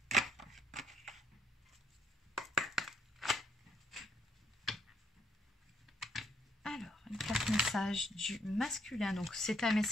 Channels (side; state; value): both; normal; correlation 0.72